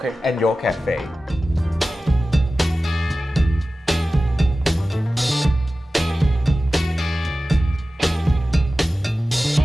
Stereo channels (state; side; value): normal; both; correlation 0.95